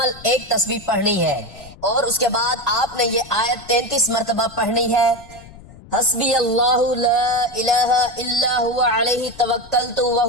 ایک تسبیح پڑھنی ہے، اور اس کے بعد آپ نے یہ آیت 33 مرتبہ پڑھنی ہے۔ حسبی اللہ لا الہ الا ہوا علیہ توکلت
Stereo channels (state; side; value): noise; left; rumble, 20 dB below the sound